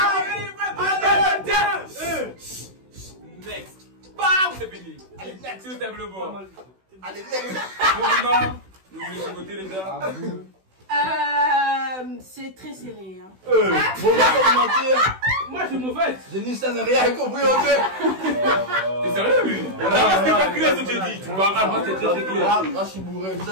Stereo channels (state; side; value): late; left; 16 ms